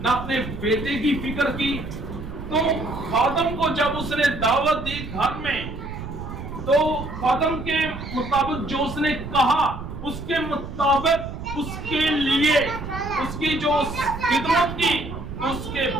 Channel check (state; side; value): noise; right; rumble, 9 dB below the sound